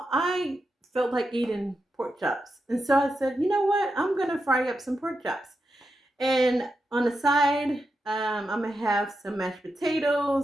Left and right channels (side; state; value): both; normal; correlation 0.87